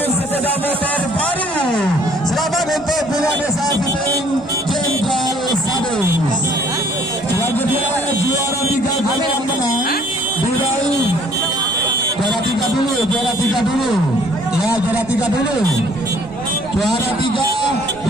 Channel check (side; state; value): both; normal; correlation 0.59